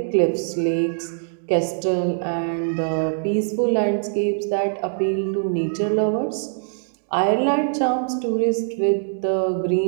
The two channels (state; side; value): silent; left; digital silence